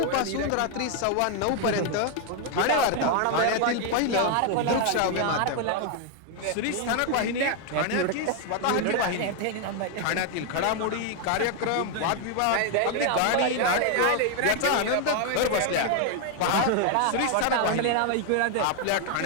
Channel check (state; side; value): different; both; correlation 0.00